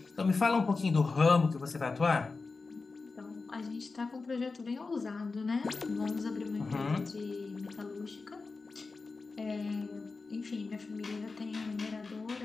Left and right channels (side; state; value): right; quieter; 4.0 dB